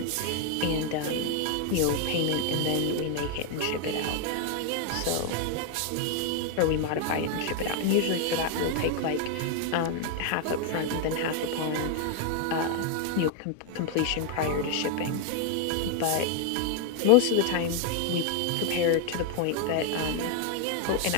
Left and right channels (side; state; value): both; different; correlation 0.01